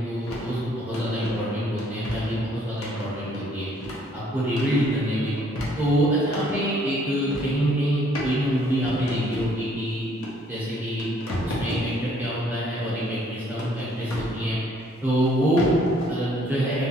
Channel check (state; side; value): normal; both; correlation 0.63